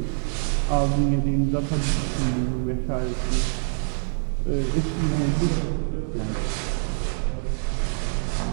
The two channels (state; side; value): silent; left; 62 dB below the other